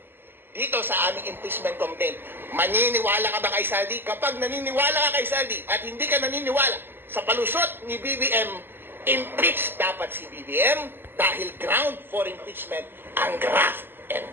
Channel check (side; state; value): left; late; 0.098 ms